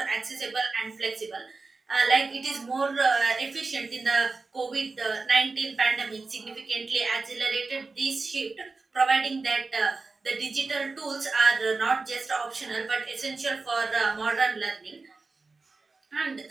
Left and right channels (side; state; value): left; quieter; 3.9 dB